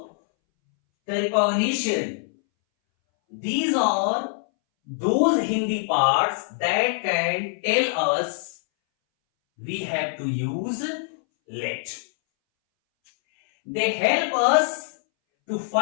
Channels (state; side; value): silent; right; 62 dB below the other